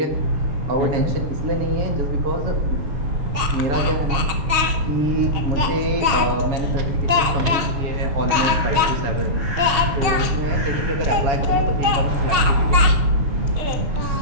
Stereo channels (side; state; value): left; late; 6.4 ms